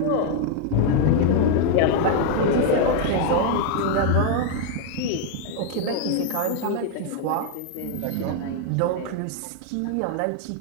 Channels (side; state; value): both; different; correlation 0.00